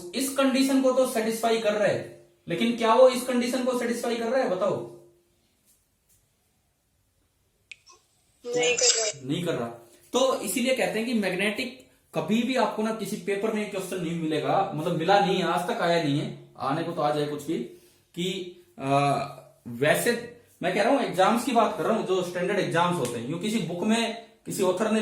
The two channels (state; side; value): identical; both; correlation 1.00